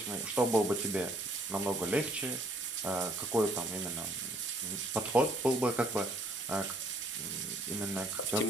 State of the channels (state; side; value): normal; both; correlation 0.63